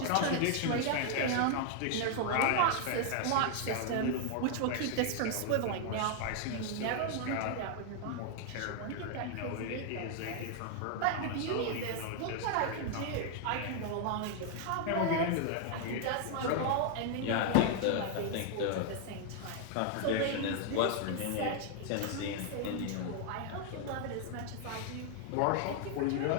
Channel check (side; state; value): both; different; correlation 0.00